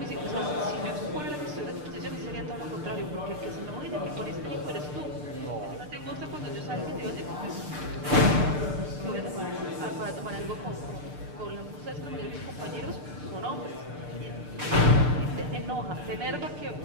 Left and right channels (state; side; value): late; left; 6.7 ms